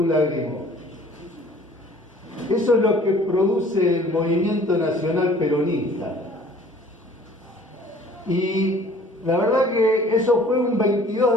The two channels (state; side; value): normal; both; correlation 0.52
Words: lágrimo. Eso es lo que produce el movimiento nacional peronista. Y la verdad que eso fue un 22